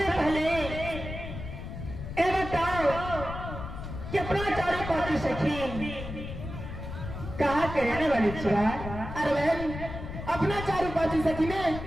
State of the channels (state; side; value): noise; left; rumble, 8 dB below the sound